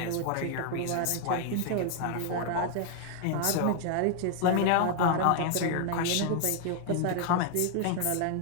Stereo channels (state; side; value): different; both; correlation 0.00